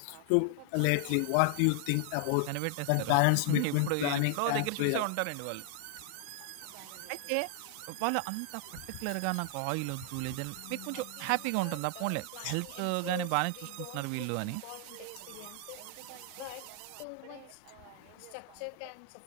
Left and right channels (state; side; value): different; both; correlation 0.00